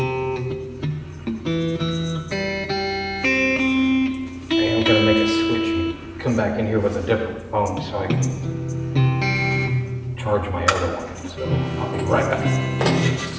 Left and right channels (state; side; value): identical; both; correlation 1.00